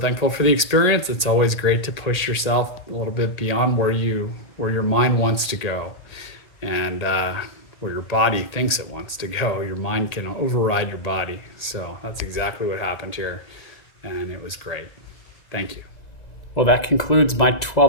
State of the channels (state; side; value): late; right; 1.8 ms